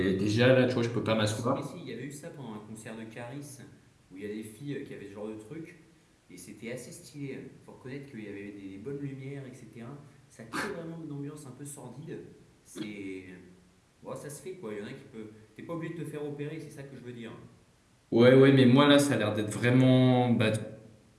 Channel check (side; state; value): both; identical; correlation 1.00